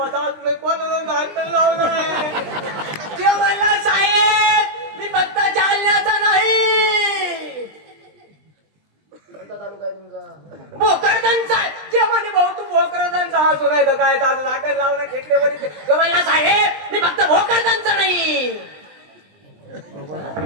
तुम्ही कोणाला झाकण लावलं नाही. ते म्हणला साहेब मी फक्त जालन्याचा नाही तर काय ताज झाकण लावणं खेकडेवर तो म्हणला साहेब मी फक्त भोकरदांचा नाही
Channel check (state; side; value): late; left; 20 ms